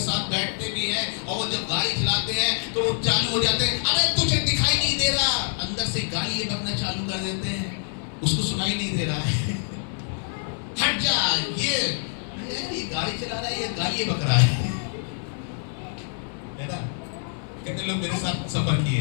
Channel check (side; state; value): right; silent; digital silence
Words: साथ बैठते भी हैं, और वो जब गाड़ी चलाते हैं तो वो चालू हो जाते हैं, अरे तुझे दिखाई नहीं दे रहा, अंदर से गाली बकना चालू कर देते हैं, उसको सुनाई नहीं दे रहा है, हट जा, ये गाड़ी चला रहा है, ये गाली बक रहा है ना। कितने लोग मेरे साथ सफर किए